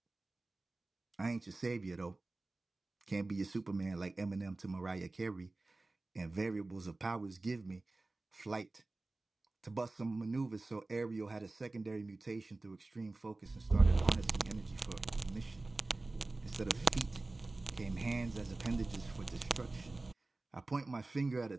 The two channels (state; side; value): quieter; left; 3.1 dB